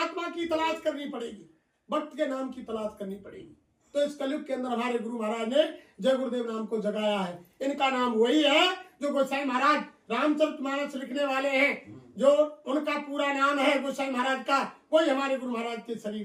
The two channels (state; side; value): identical; both; correlation 1.00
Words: की तलाश करनी पड़ेगी, भक्त के नाम की तलाश करनी पड़ेगी। तो इस कलयुग के अंदर हमारे गुरु महाराज ने जय गुरुदेव नाम को जगाया है। इनका नाम वही है जो गोसाई महाराज रामचरितमानस लिखने वाले हैं, जो उनका पूरा नाम है गोसाई महाराज का, वही हमारे गुरु महाराज के